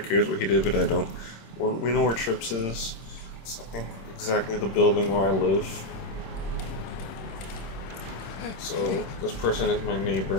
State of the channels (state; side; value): late; right; 26 ms